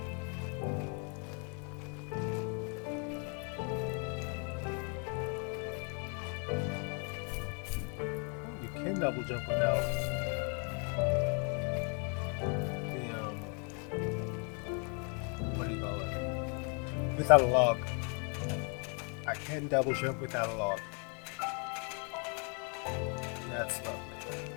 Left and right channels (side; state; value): right; quieter; 37.8 dB